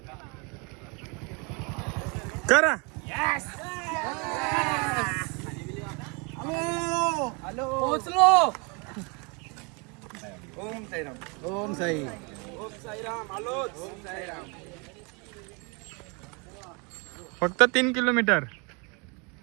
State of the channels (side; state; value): left; quieter; 31.8 dB